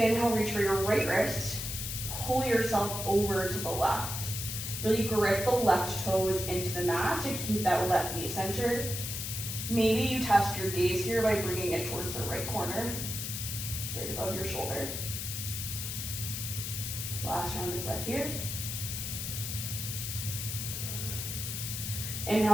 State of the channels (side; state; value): left; noise; hiss, 4 dB below the sound